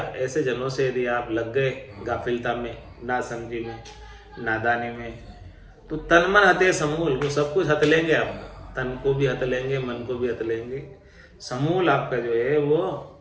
जनों से यदि आप लग गए गाफिलता में, ना समझी में, नादानी में, तो तन मन हते समूल, वो सब कुछ हत लेंगे आपका, तन को भी हत लेंगे, मन को भी हत लेंगे, समूल आपका जो है वो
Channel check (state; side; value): identical; both; correlation 1.00